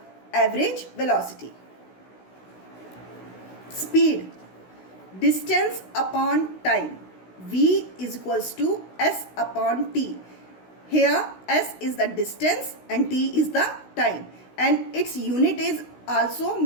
average velocity. Speed, distance upon time, V is equals to S upon T. Here S is the distance and T is the time, and its unit is also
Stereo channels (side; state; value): right; late; 16 ms